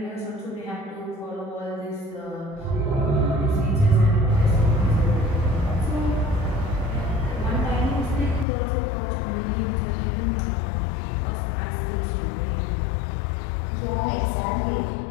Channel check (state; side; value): drops out; right; at 8.5 s